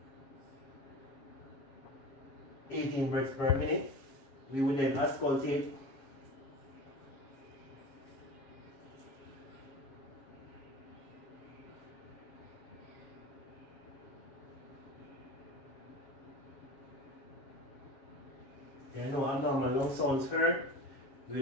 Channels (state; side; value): late; right; 7.3 ms